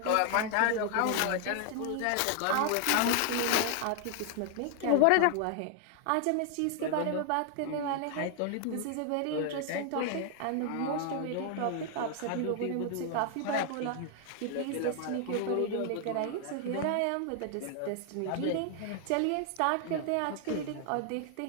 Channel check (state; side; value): different; both; correlation 0.00